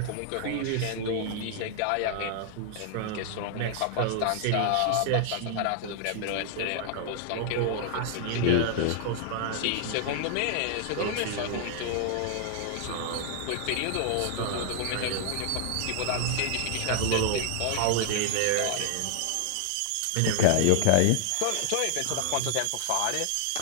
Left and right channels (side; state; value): both; different; correlation 0.00